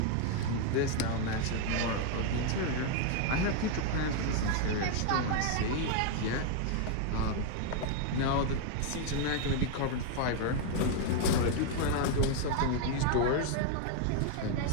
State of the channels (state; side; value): different; both; correlation 0.00